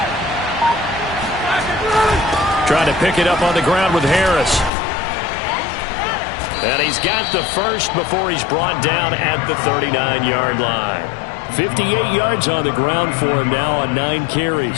Trying to pick it up on the ground with Harris. And he's got the first before he's brought down at the 39-yard line. 58 yards on the ground for him now on 9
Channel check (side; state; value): right; drops out; at 4.7 s